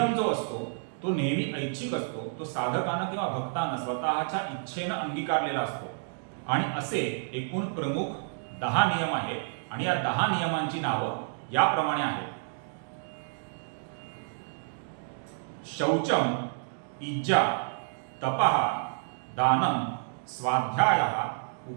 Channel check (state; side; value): silent; left; digital silence